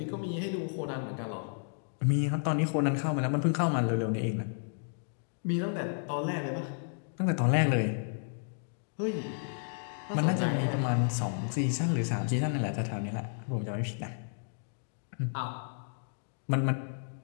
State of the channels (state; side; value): silent; right; digital silence